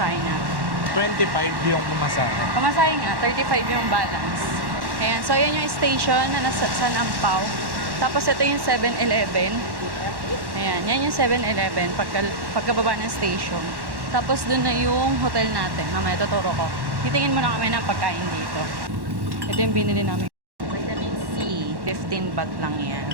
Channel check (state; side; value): late; left; 1.1 ms